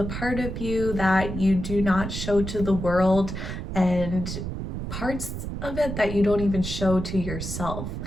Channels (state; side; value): noise; right; rumble, 5 dB below the sound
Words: part of you that you do not show to the world, and parts of it that you don't even show to yourself.